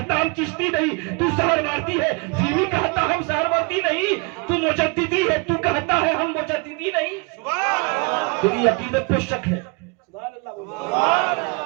ہم چشتی نہیں. تو سہروردی ہے پھر بھی کہتا ہم سہروردی نہیں. تو مجددی ہے تو کہتا ہے ہم مجددی نہیں. تیری عقیدت پہ شک ہے,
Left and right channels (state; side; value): quieter; left; 30.9 dB